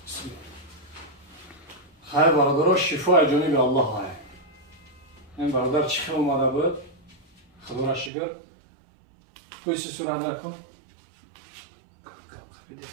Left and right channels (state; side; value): drops out; left; at 8.1 s